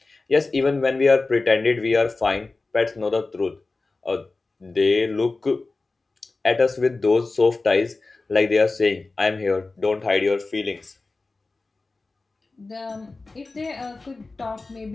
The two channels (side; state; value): right; quieter; 3.5 dB